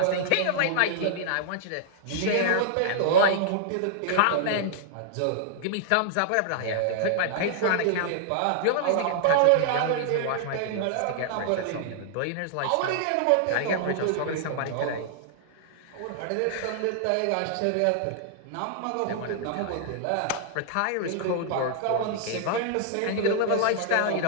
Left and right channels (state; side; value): different; both; correlation -0.01